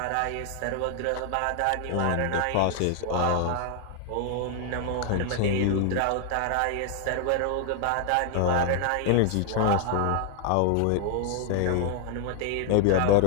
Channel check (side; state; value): both; different; correlation 0.00